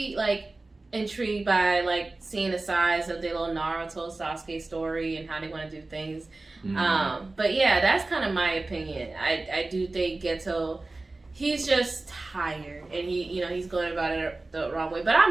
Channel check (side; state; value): left; quieter; 3.2 dB